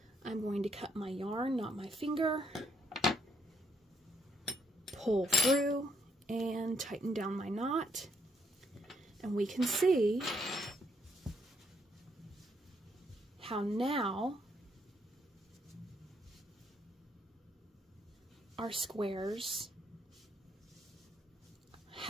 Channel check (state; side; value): normal; both; correlation 0.73